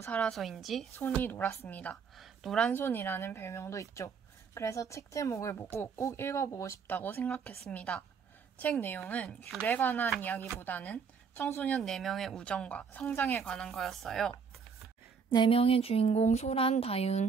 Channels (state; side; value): quieter; left; 6.0 dB